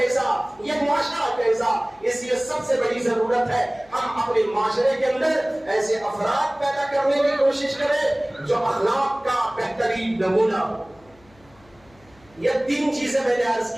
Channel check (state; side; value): noise; left; hum, 29 dB below the sound